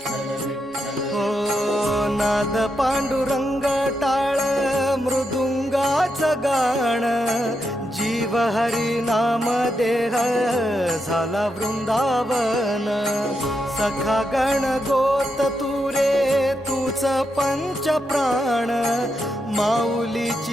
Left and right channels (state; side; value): normal; both; correlation 0.83